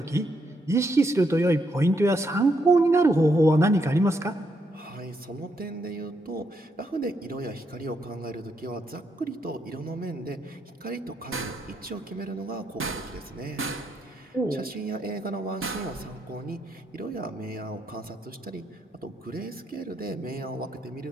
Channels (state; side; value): normal; both; correlation 0.78